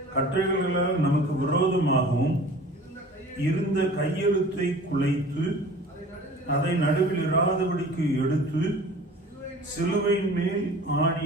கட்டளைகளால் நமக்கு விரோதமாகவும் இருந்த கையெழுத்தை குலைத்து அதை நடுவில் இராதபடிக்கு எடுத்து சிலுவையின் மேல் ஆணி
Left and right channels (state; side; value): normal; both; correlation 0.43